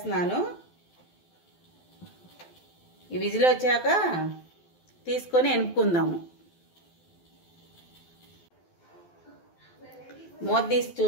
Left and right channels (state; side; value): late; right; 12 ms